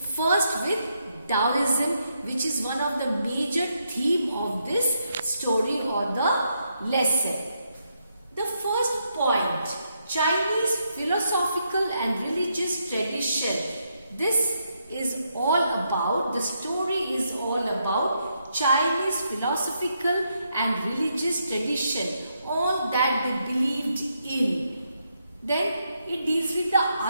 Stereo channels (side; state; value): both; inverted; correlation -0.79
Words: with Taoism, which is one of the major theme of this story or the lesson. The first point, Chinese philosophical and religious tradition. This is all about, the story is all about Chinese philosophical and religious tradition, all that they believed in. Then it deals with the